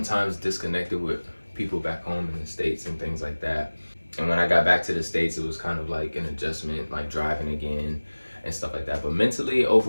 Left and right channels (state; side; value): inverted; both; correlation -1.00